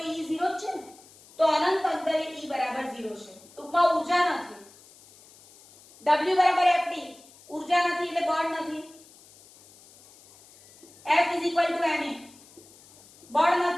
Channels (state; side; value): noise; left; hiss, 24 dB below the sound